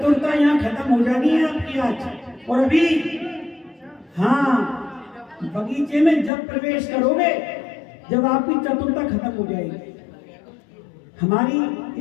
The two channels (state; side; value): drops out; right; at 6.3 s